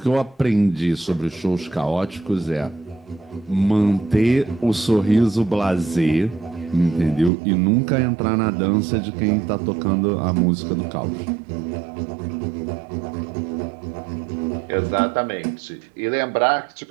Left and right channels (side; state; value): left; drops out; at 7.3 s